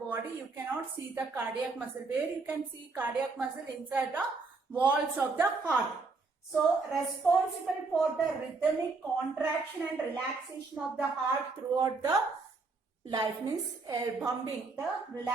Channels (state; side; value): quieter; left; 4.0 dB